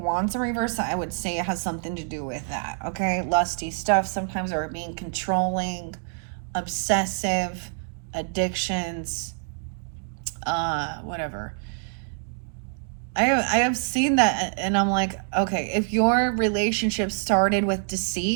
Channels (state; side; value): silent; left; 61 dB below the other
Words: Wands in reverse, I would say it has something to do with that. Okay, lusty stuff sometimes, are being controlling, obsessive, addictions, whatever. I have seen that, and I'm like, okay, if your relationship started with